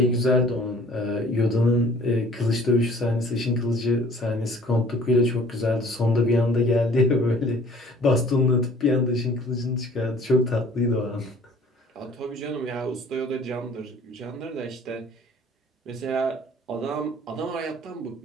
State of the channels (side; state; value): both; normal; correlation 0.52